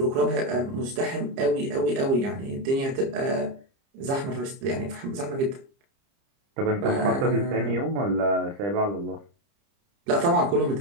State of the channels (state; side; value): late; left; 30 ms